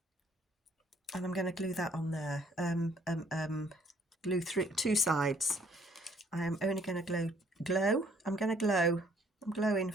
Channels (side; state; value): both; normal; correlation 0.63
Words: And I'm going to glue that on there. Glue through 2 sides. I am only going to glow. I'm going to glow. I'm glowing,